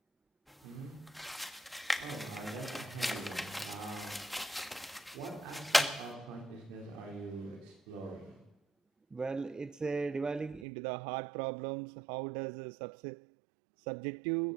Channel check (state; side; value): drops out; left; at 10.7 s